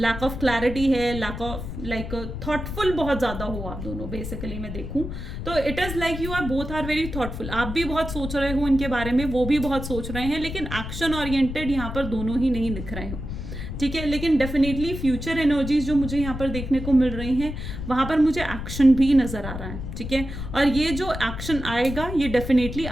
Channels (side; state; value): left; noise; rumble, 7 dB below the sound